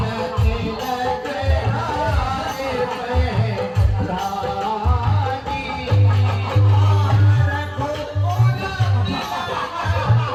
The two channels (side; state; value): both; identical; correlation 1.00